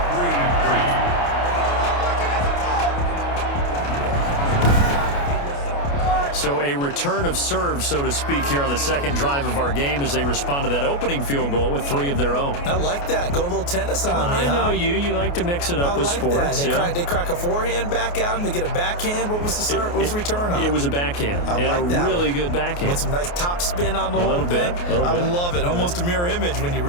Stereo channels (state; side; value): late; right; 28 ms